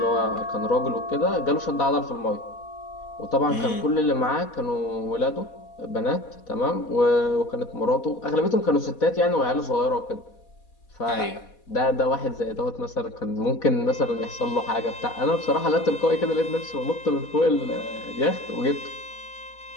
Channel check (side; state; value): right; late; 4.1 ms